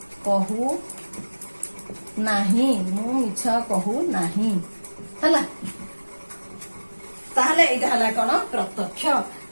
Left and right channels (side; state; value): both; inverted; correlation -1.00